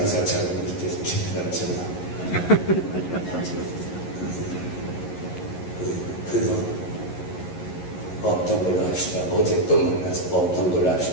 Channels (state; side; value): late; right; 11 ms